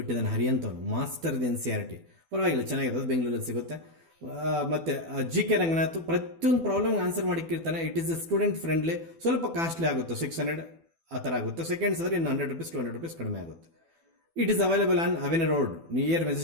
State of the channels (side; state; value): left; late; 12 ms